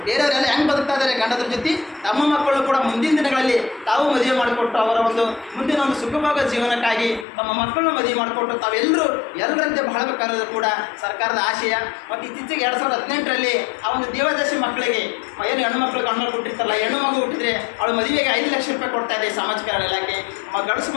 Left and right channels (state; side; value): drops out; right; at 7.2 s